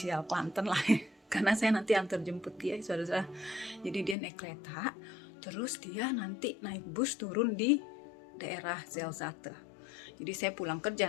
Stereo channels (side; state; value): right; drops out; at 4.2 s